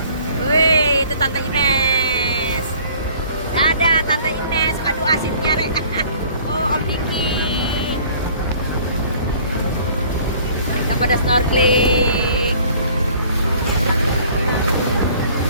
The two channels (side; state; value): both; inverted; correlation -0.53